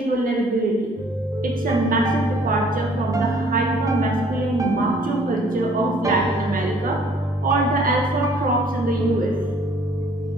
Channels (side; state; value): both; normal; correlation 0.58